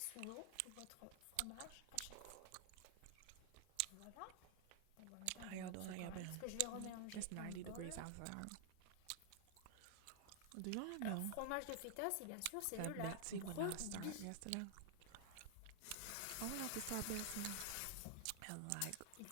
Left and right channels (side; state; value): both; different; correlation 0.00